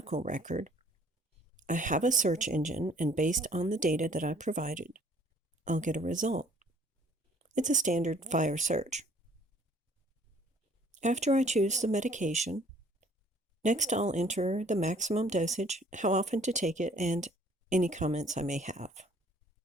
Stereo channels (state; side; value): normal; both; correlation 0.58